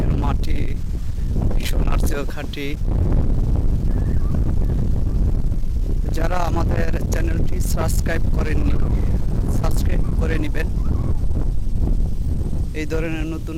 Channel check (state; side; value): identical; both; correlation 1.00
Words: মাটি সোনার চেয়েও খাঁটি। যারা আমাদের চ্যানেলটি সাবস্ক্রাইব করেননি, সাবস্ক্রাইব করে নেবেন এই ধরনের নতুন